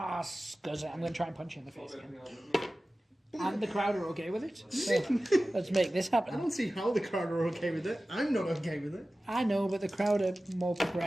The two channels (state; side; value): normal; both; correlation 0.96